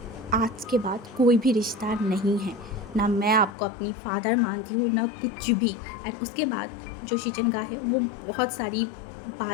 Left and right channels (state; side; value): drops out; right; at 3.6 s